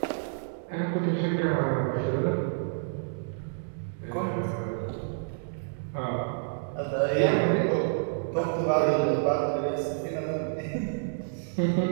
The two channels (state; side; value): silent; left; digital silence